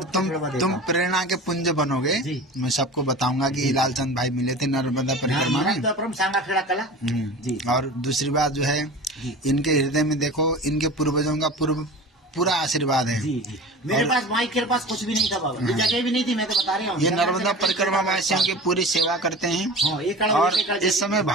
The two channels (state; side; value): normal; both; correlation 0.35